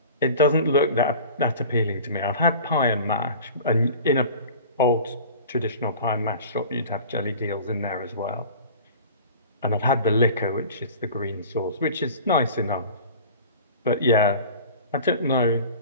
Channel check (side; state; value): both; inverted; correlation -0.40